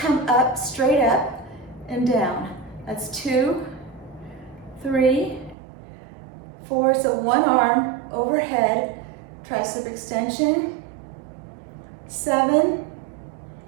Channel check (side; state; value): left; drops out; at 5.6 s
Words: up, straight up and down. That's 2, 3, 4, so one arm overhead, tricep extension. 7,